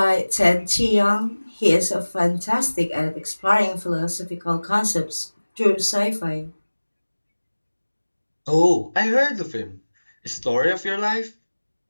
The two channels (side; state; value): both; inverted; correlation -1.00